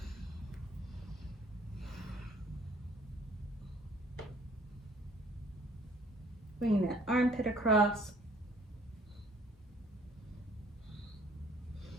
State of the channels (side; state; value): both; normal; correlation 0.58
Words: Bringing that armpit across.